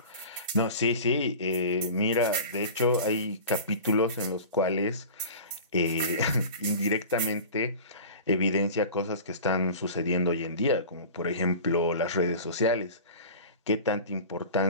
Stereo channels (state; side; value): inverted; both; correlation -0.37